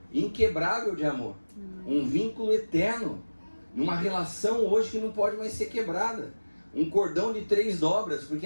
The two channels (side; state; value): both; inverted; correlation -1.00